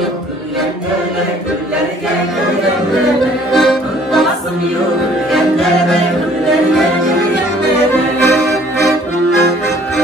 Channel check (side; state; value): both; normal; correlation 0.57